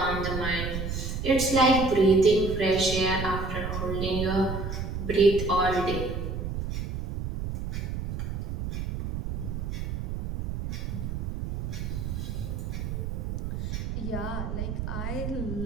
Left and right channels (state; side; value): noise; right; rumble, 4 dB below the sound